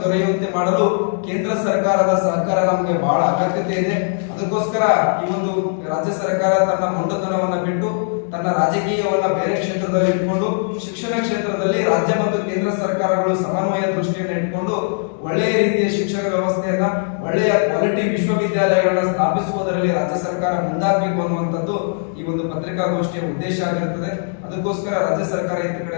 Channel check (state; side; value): silent; right; digital silence